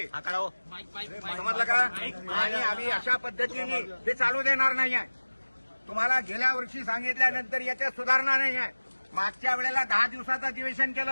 समजलं का? आणि आम्ही अशा पद्धतीने ते चालू देणार नाही आहे. तुम्हाला गेल्या वर्षी सांगितल्यानंतर याच्यात सुधारणा नाही आहे. मागच्या वेळेला 10 दिवसाचं अधिवेशन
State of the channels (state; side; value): inverted; both; correlation -1.00